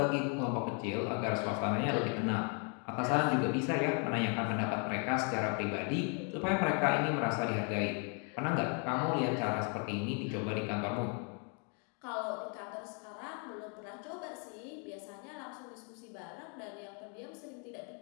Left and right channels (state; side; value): quieter; right; 38.9 dB